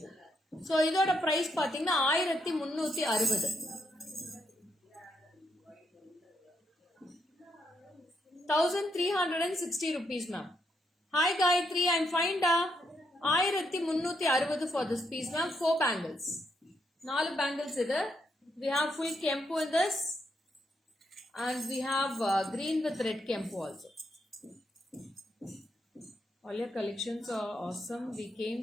So இதோட price பாத்தீங்கன்னா 1360. 1360 rupees ma'am. Hi Gayatri, I'm fine da. 1360 for this piece ma'am. 4 bangles. 4 bangles இது. We have full kempu in this. And we have green with red kempu also. All your collections are awesome. We came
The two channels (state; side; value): normal; both; correlation 0.78